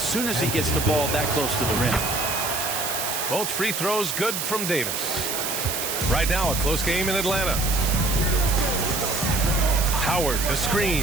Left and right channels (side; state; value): right; noise; hiss, 2 dB below the sound